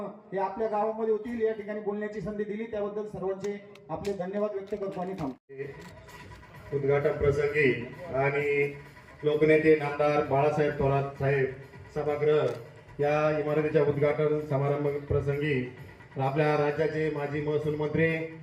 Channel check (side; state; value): both; identical; correlation 1.00